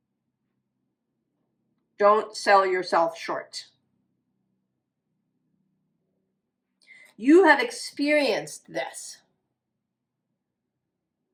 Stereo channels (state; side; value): identical; both; correlation 1.00